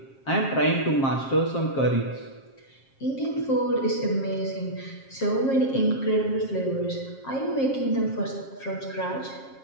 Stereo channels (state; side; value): late; right; 7.5 ms